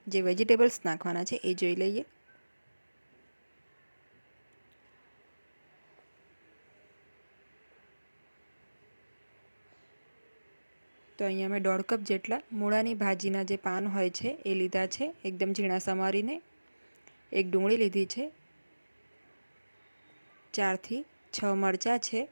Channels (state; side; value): inverted; both; correlation -1.00